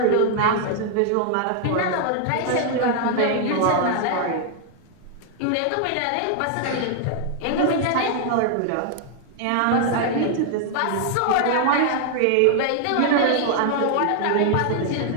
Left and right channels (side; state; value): both; different; correlation 0.00